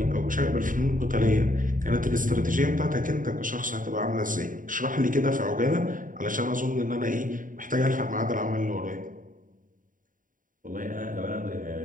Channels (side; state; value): left; late; 0.39 ms